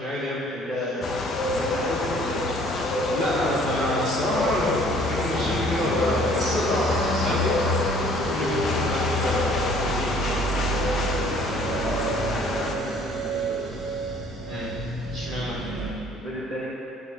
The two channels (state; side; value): normal; both; correlation 0.56